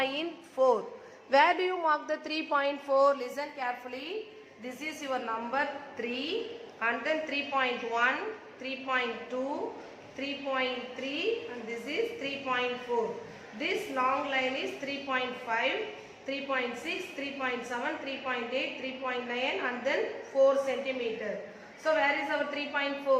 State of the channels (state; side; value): identical; both; correlation 1.00